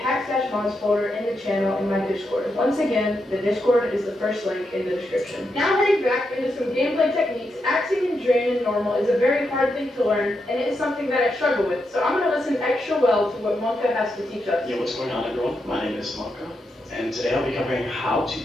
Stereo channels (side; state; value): both; normal; correlation 0.84